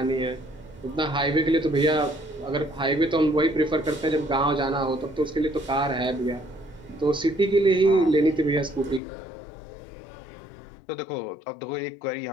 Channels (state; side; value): drops out; right; at 9.0 s